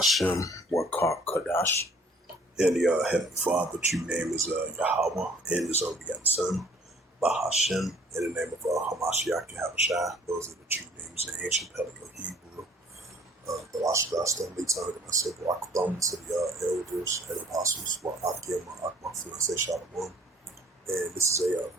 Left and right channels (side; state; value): both; normal; correlation 0.56